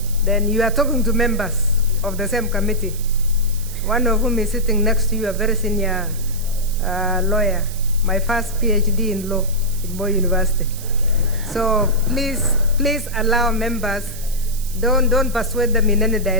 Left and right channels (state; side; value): noise; right; hiss, 14 dB below the sound